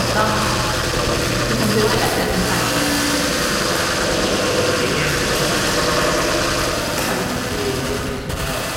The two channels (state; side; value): identical; both; correlation 1.00